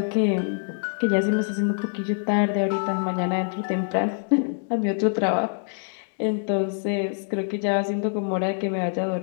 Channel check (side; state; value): right; silent; digital silence